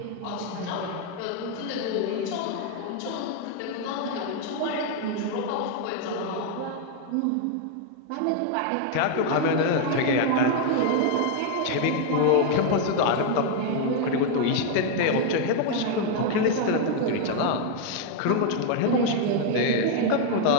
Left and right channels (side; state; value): both; different; correlation 0.00